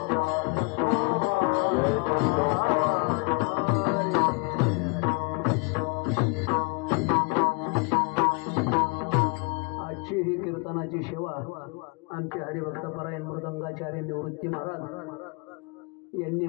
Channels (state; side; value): quieter; right; 32.0 dB